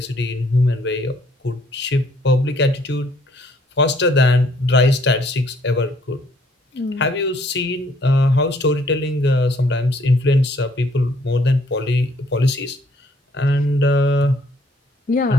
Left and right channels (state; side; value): normal; both; correlation 0.65